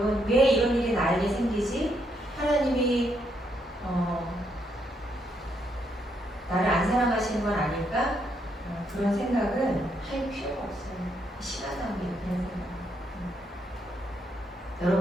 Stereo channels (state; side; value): normal; both; correlation 0.76